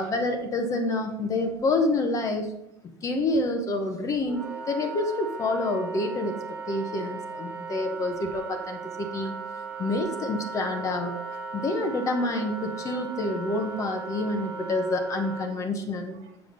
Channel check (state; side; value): normal; both; correlation 0.44